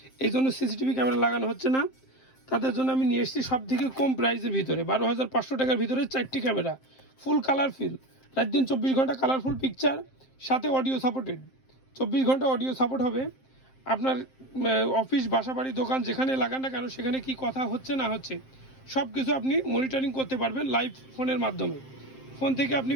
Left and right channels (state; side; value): late; right; 7.6 ms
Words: এই জন্য সিসিটিভি ক্যামেরা লাগানো হচ্ছে না, তাদের জন্য আমি নিয়ে এসেছি সব থেকে কম প্রাইসের ভিতরে 12,500 টাকার ভিতরে 4টি ক্যামেরা, ফুল কালারফুল, রাত দিন 24 ঘন্টা কালারফুল পিকচার, সাথে অডিও সাপোর্টেড। 24 ঘন্টা অডিও সাপোর্ট হবে। আপনার অফিস, বাসা, বাড়ি, দোকান যেখানে লাগান না কেন সেখানে কি কথা হচ্ছে না হচ্ছে সব কিছু আপনি মনিটরিং করতে পারবেন লাইভ ফোনের মাধ্যমে। ফোন থেকে আপনি